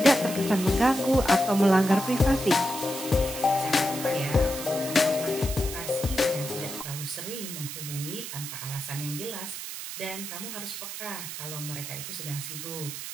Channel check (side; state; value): right; noise; hiss, 8 dB below the sound